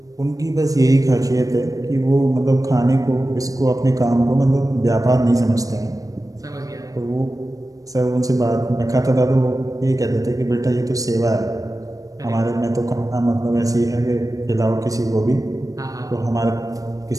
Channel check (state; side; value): late; left; 0.17 ms